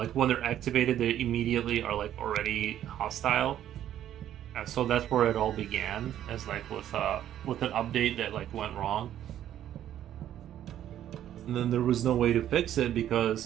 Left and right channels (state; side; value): quieter; left; 11.3 dB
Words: when they're activated, they immediately are like already hostile. And so that's where it all began, as like with an update that like went wrong, and then there was no way to fix it